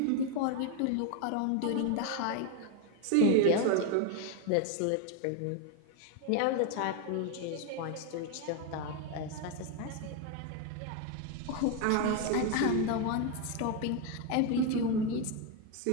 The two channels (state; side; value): different; both; correlation 0.02